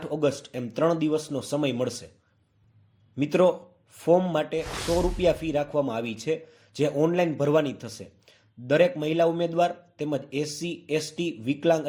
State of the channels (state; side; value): identical; both; correlation 1.00